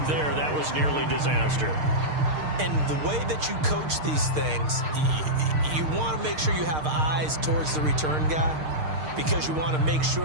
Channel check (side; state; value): left; late; 6.5 ms